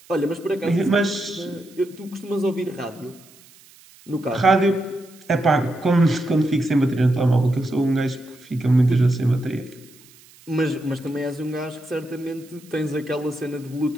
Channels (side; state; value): right; noise; hiss, 25 dB below the sound